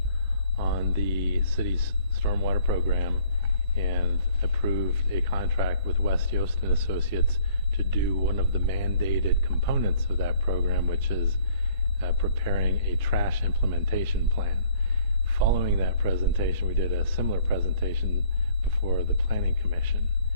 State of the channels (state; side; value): inverted; both; correlation -0.57